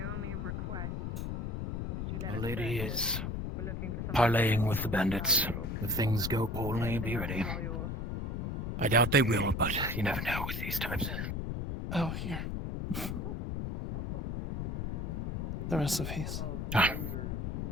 only request is that you let The us lady search it. is We're looking for something parlaying with valuable. the bandits. If things go poorly, be ready. I doubt they will, but you never know with these types. Oh, here. The recipes. Done.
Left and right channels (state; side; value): noise; left; rumble, 3 dB below the sound